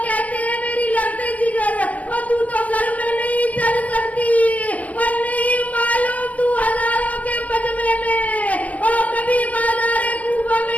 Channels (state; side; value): late; right; 0.070 ms